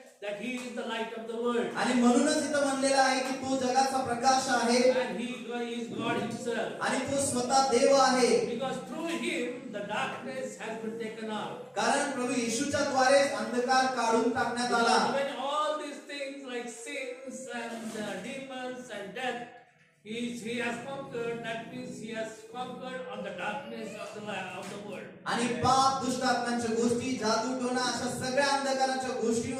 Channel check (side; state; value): both; identical; correlation 1.00